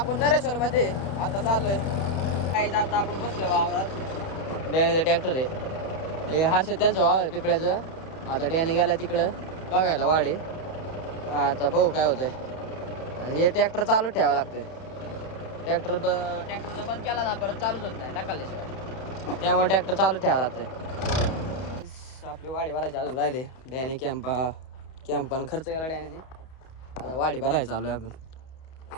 नरेश्वर मध्ये आता चाललोय. काही आता आपण बसलो वावरात. डॅनीचा ट्रॅक्टर आहे हे हर्षद त्यांचं वावर आहे पिपळ्याचं. आता डॅनी गेला तिकडं बघायला वाडी. आता बघू काय होतंय. आणि हे ट्रॅक्टर चालूच ठेवावं लागतं. ट्रॅक्टरचा बंद केला ना परत चालूच होत नाही टाकल्याशिवाय. त्यामुळे ट्रॅक्टर चालूच ठेवावं लागतं. आपले वाडी भरायचे अजून राहिले. डॅनी कॅम्पन खर्च केला डॅनीने. आता वाडी भरायचं चालू आहे आपण.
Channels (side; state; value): right; late; 31 ms